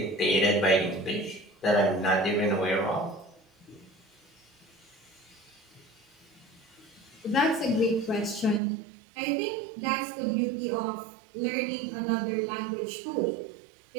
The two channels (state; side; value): drops out; left; at 8.6 s